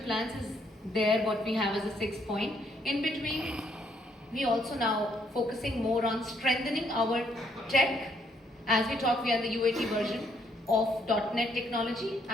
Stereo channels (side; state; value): both; normal; correlation 0.70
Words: plans is there, what we have as a 6th point. In between, we also now focusing more on strengthening our tech. As we talk, we are the UAT version of .NET technology.